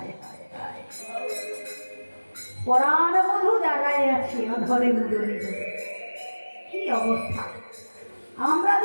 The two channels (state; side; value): inverted; both; correlation -1.00